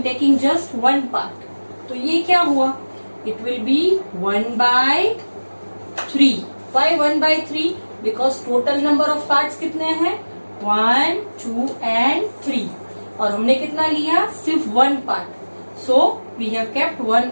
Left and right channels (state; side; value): inverted; both; correlation -1.00